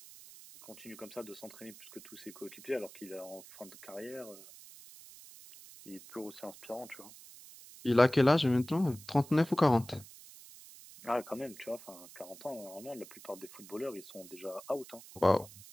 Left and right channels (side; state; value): right; noise; hiss, 18 dB below the sound